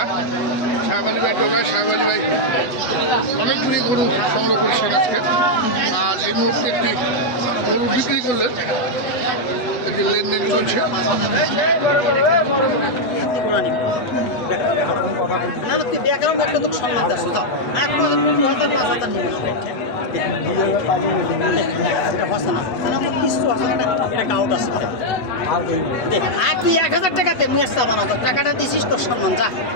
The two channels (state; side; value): late; right; 8.0 ms